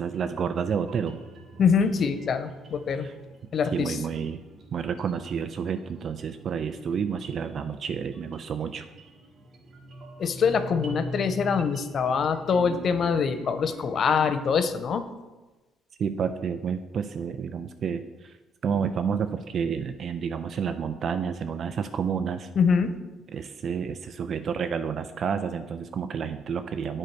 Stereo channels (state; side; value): normal; both; correlation 0.69